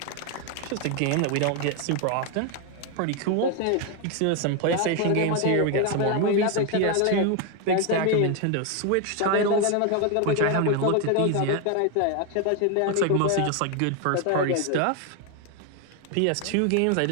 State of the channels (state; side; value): different; both; correlation 0.01